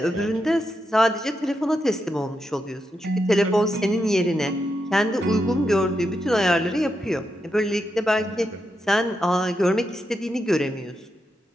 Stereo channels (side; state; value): both; normal; correlation 0.85